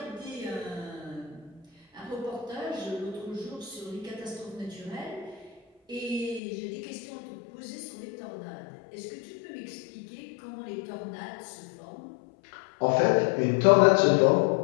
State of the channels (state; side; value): drops out; right; at 6.4 s